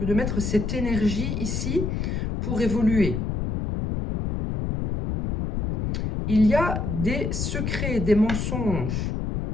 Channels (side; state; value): left; noise; rumble, 2 dB below the sound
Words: de mettre cette énergie ici pour évoluer. Il y a des secrets, des mensonges.